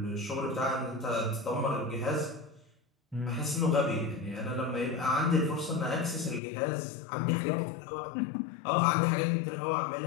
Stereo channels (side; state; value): right; drops out; at 6.4 s